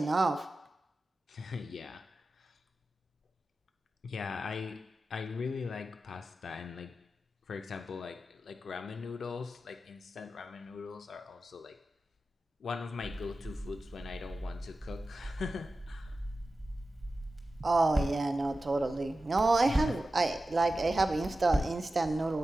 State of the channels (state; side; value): normal; both; correlation 0.93